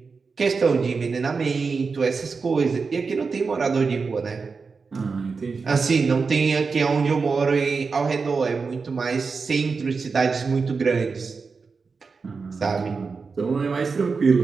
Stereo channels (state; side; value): quieter; left; 4.8 dB